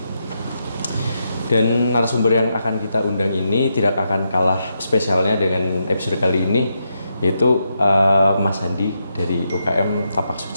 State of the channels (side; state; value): both; inverted; correlation -0.83